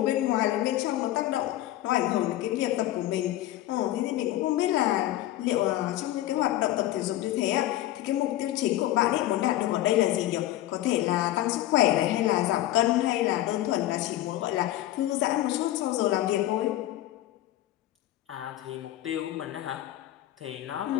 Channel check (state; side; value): quieter; right; 14.5 dB